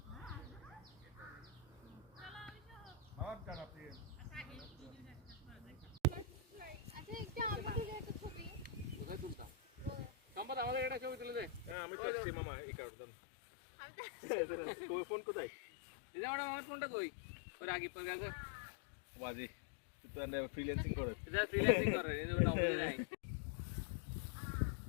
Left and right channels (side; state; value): right; drops out; at 11.8 s